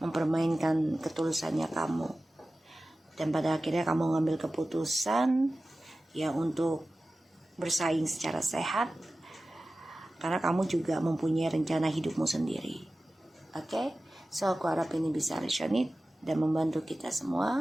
ketulusannya kamu. Dan pada akhirnya kamu ngambil keputusan ya untuk bersaing secara sehat Karena kamu juga mempunyai rencana hidupmu sendiri. Oke? So aku harap ini bisa resonate dan membantu kita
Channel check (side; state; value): both; normal; correlation 0.96